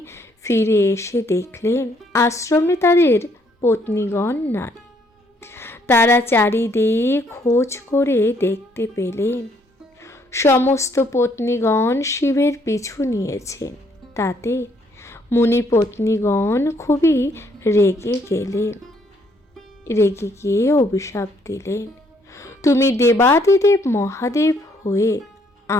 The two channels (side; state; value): both; normal; correlation 0.68